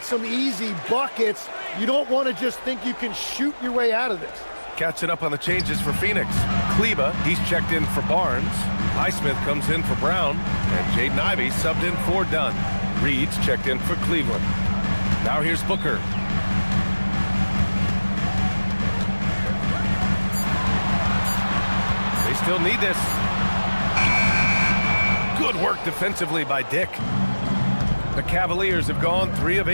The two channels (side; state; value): both; inverted; correlation -1.00